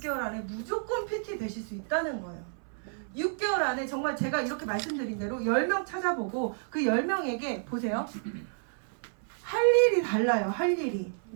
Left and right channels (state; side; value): silent; left; 58 dB below the other